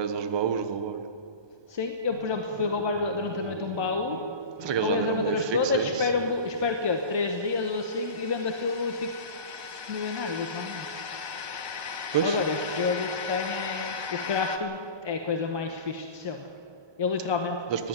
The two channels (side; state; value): left; late; 1.2 ms